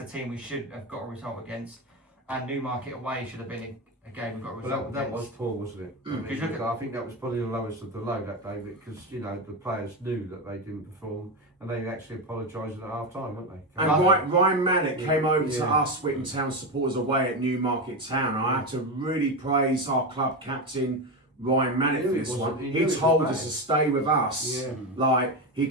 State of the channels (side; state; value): both; normal; correlation 0.15